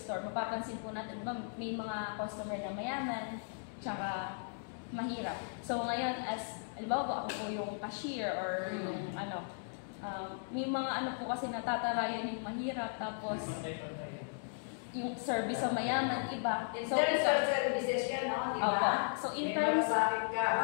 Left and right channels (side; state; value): right; silent; digital silence